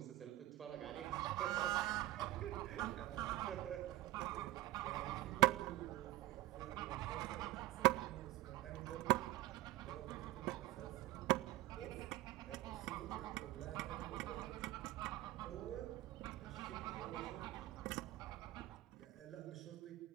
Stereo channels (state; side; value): quieter; left; 17.3 dB